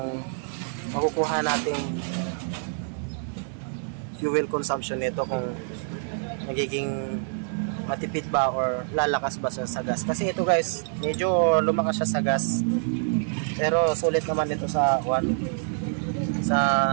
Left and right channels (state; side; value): silent; left; 61 dB below the other